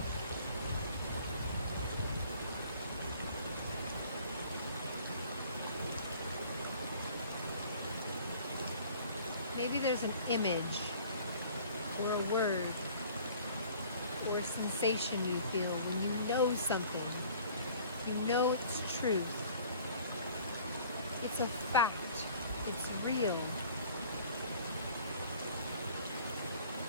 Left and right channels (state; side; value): inverted; both; correlation -0.51